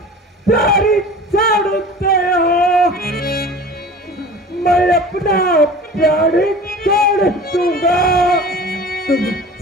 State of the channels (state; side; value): normal; both; correlation 0.40